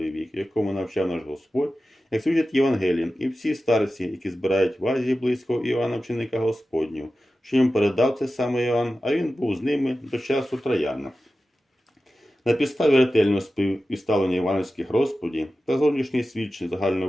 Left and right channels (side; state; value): both; normal; correlation 0.94